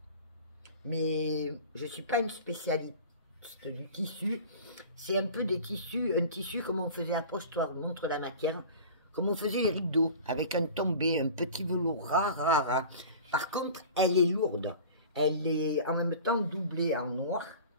Mais je ne suis pas une spécialiste du tissu. C'est un peu des tissus, un tissu comme on faisait à Postoir, montre la matière, comme on faisait les rideaux, avec un tombé, un petit velours rare. Par contre, elle est lourde. Elle est en même temps doublée en noir.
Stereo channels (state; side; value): inverted; both; correlation -0.39